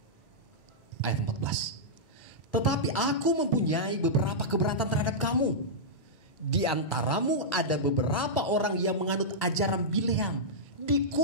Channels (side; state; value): both; normal; correlation -0.11